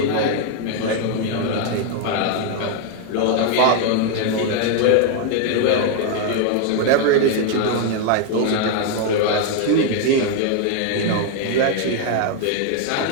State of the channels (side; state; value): both; different; correlation 0.00